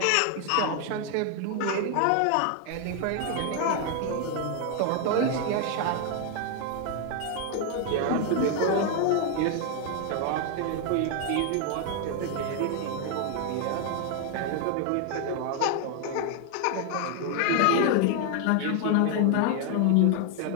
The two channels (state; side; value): different; both; correlation 0.00